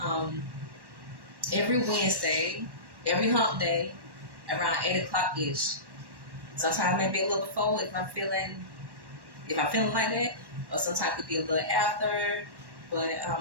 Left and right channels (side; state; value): left; late; 1.1 ms